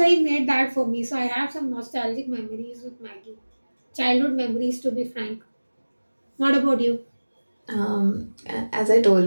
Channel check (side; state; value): both; inverted; correlation -1.00